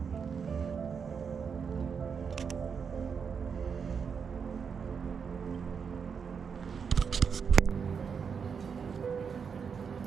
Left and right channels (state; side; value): quieter; left; 6.3 dB